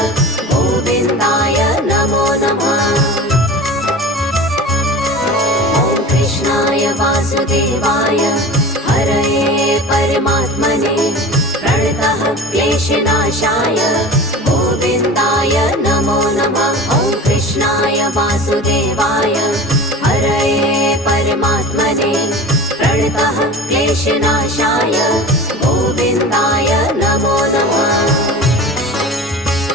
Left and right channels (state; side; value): normal; both; correlation 0.35